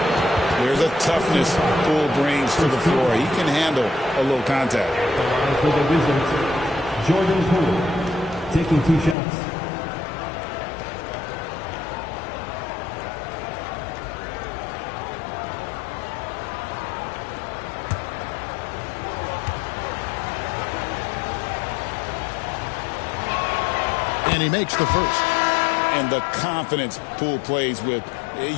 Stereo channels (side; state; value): right; drops out; at 9.2 s